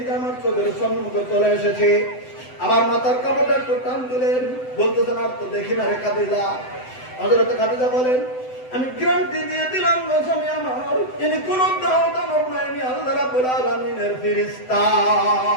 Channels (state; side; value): late; right; 7.9 ms